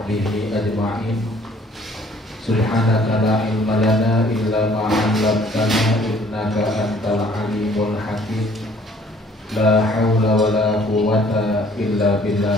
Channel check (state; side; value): normal; both; correlation 0.58